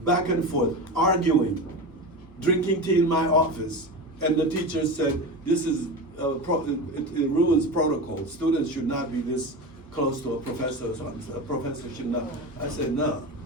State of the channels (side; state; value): both; normal; correlation 0.25